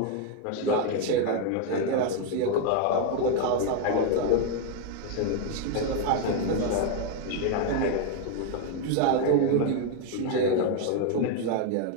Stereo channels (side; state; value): both; different; correlation 0.01